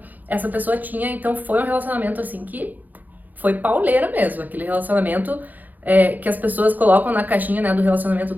essa pessoa tinha. Então foi um relacionamento assim que foi pauleira mesmo, aquele relacionamento que as pessoas colocam na caixinha, né, do relacionamento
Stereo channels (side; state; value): left; late; 0.083 ms